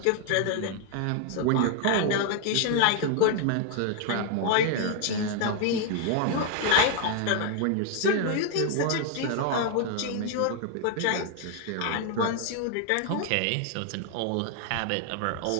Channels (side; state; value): both; different; correlation 0.00